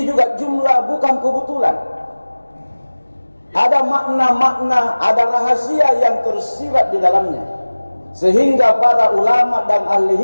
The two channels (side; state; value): both; inverted; correlation -1.00